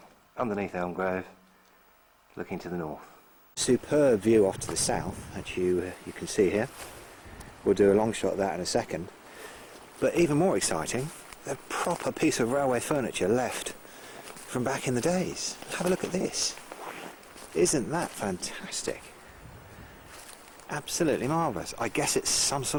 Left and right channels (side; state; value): both; identical; correlation 1.00